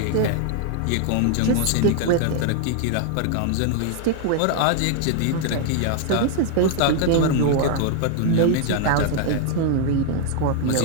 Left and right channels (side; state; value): both; different; correlation 0.00